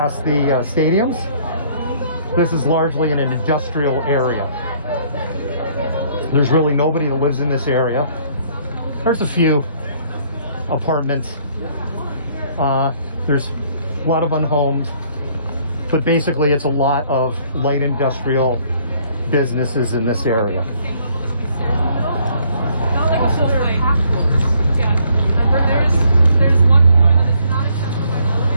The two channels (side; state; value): both; inverted; correlation -0.64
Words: this is largely in an industrial area. There's really nobody that lives in this area. There's a few apartments. There's a lot of unhomed, but basically it's a lot of light industrial businesses in this area.